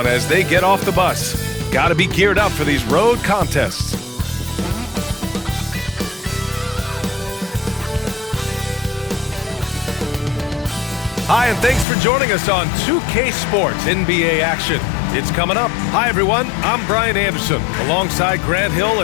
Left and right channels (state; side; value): drops out; right; at 11.9 s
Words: as they get off the bus. Got to be geared up for these road contests. Hi, and thanks for joining us on 2K Sports NBA action. It's coming up. Hi, everyone. I'm Brian Anderson, alongside Grant Hill